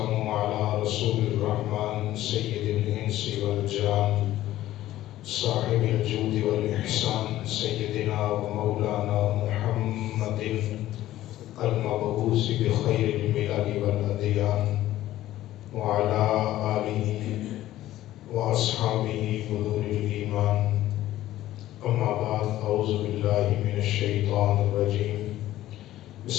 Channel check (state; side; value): quieter; right; 14.4 dB